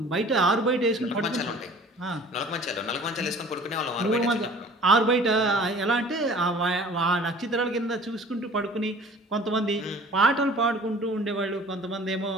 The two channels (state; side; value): normal; both; correlation 0.48